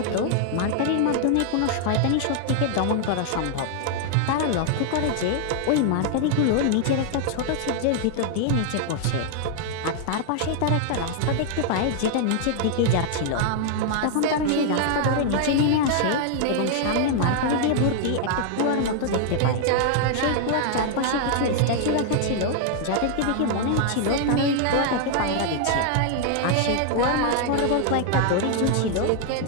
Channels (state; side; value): different; both; correlation 0.00